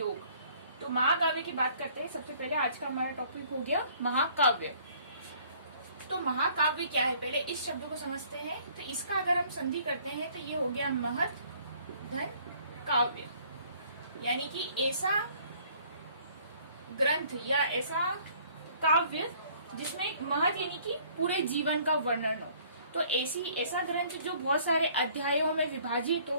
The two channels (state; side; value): inverted; both; correlation -0.58